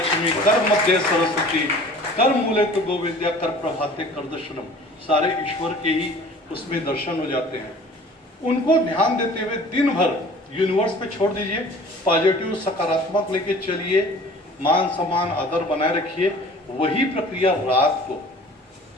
कर मध्य सरस्वती कर मूले तो गोविंद्या कर प्रभाते कर दर्शनम। सारे ईश्वर के ही उसमें दर्शन हो जाते हैं। उनको ध्यान देते हुए दिन भर यूनिवर्स पे छोड़ दीजिए, पॉजिटिव सकारात्मक लेके चलिए, मान सम्मान आदर बनाए रखिए। वही प्रक्रिया रात को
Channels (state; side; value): normal; both; correlation 0.46